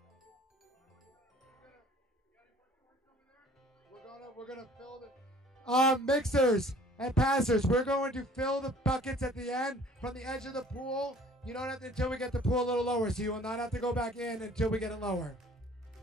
We're gonna fill the mixers and passers. We're going to fill the buckets at the end from the edge of the pool. You don't have to until we get the pool a little lower, so you will not have to go back in until we get it lower.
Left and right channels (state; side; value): normal; both; correlation 0.52